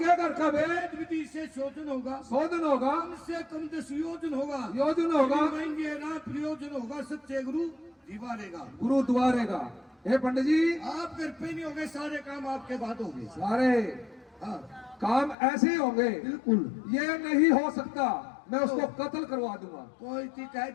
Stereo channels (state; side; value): drops out; right; at 15.4 s